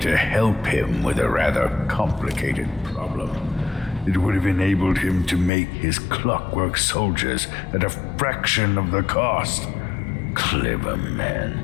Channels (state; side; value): drops out; right; at 5.5 s